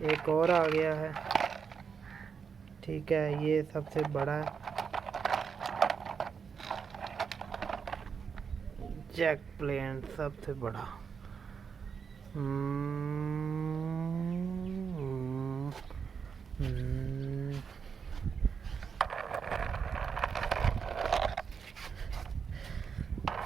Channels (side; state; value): left; quieter; 6.3 dB